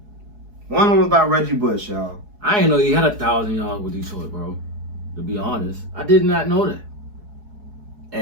One of them was by Reggie Bush, y'all. I didn't know he had 1,000 yards with Detroit, bro. To be honest, I did not know that.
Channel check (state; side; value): late; left; 4.7 ms